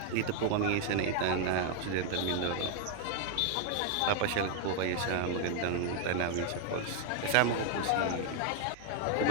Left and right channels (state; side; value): different; both; correlation 0.00